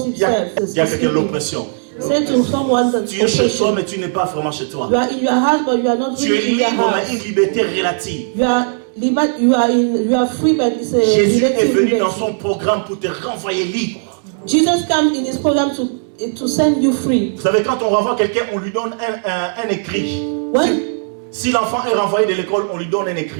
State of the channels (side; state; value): left; silent; digital silence